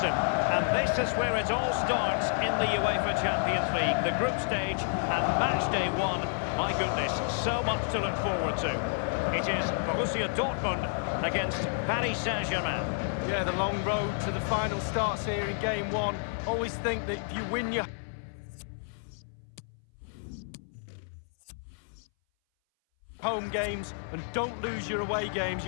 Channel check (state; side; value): silent; right; 58 dB below the other